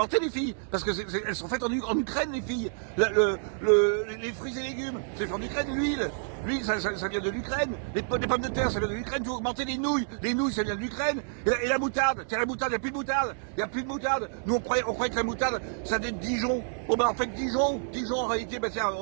les filles. Parce que elles sont faites en Ukraine, les filles. Les fruits et légumes, c'est fait en Ukraine. L'huile, ça vient de l'Ukraine. Les pommes de terre, ça vient de l'Ukraine. Tout a augmenté. Les nouilles, ça vient de l'Ukraine. Et la moutarde, tiens, la moutarde, il n'y a plus de moutarde. Il n'y a plus de moutarde. Nous, on croyait que la moutarde, ça venait de Dijon. Bon, ben, en fait, Dijon, en réalité, ben, tiens,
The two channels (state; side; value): silent; left; 59 dB below the other